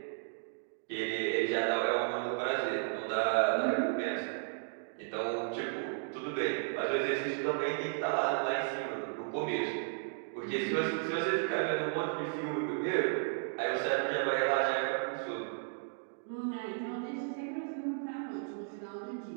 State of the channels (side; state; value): left; silent; digital silence